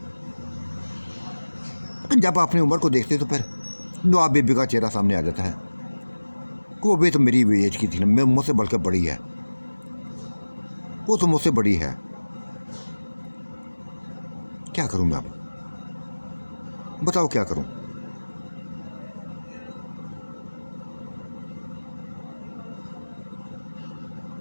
तो जब अपनी उम्र को देखते तो फिर नवाब बीबी का चेहरा सामने आ जाता है कि वो भी तो मेरी एज की थी ना, मैं मुझसे बढ़कर बड़ी है, वो तो मुझसे बड़ी है। क्या करूं मैं अब, बताओ क्या करूं।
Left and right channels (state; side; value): inverted; both; correlation -1.00